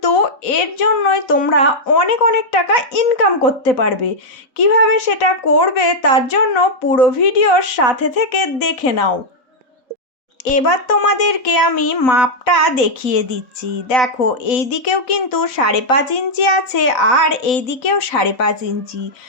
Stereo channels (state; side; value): late; right; 4.0 ms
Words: এর জন্যই তোমরা অনেক অনেক টাকা ইনকাম করতে পারবে। কিভাবে সেটা করবে তার জন্য পুরো ভিডিওর সাথে থেকে দেখে নাও। এবার তোমাদেরকে আমি মাপটা দেখিয়ে দিচ্ছি। দেখো, এই দিকেও কিন্তু 5.5 ইঞ্চি আছে আর এই দিকেও 5.5 ইঞ্চি।